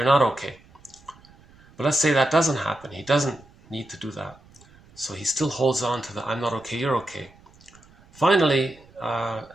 not okay. But let's say that doesn't happen. He doesn't need to do that. So he still holds on to the I'm not okay, you're okay. Finally,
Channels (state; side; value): noise; right; rumble, 27 dB below the sound